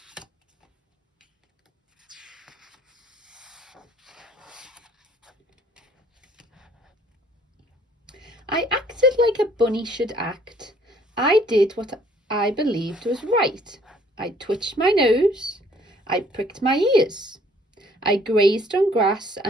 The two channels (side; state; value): both; normal; correlation 0.60